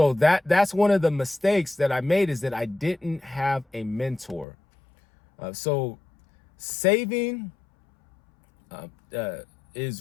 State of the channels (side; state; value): right; drops out; at 4.5 s